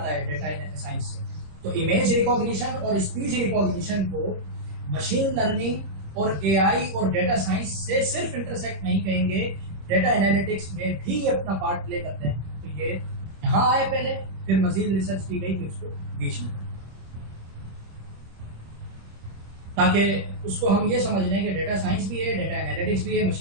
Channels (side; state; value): left; late; 26 ms